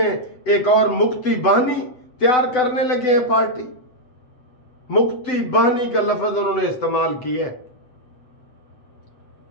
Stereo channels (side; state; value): right; late; 8.0 ms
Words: ایک اور مکتی بانی تیار کرنے لگے ہیں پارٹی۔ مکتی بانی کا لفظ انہوں نے استعمال کیا ہے۔